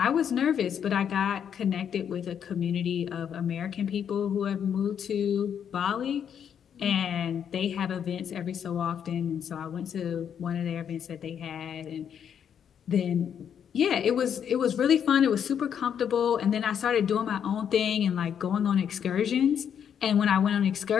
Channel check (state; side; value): quieter; right; 8.3 dB